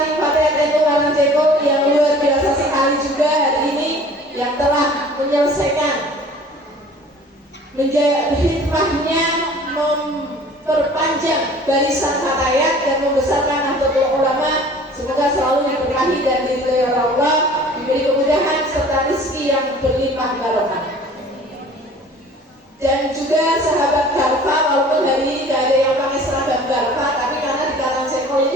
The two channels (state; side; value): normal; both; correlation 0.48